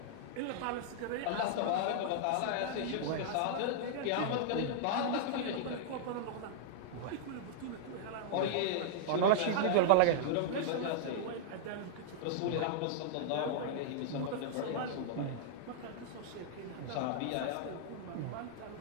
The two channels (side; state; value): both; different; correlation -0.01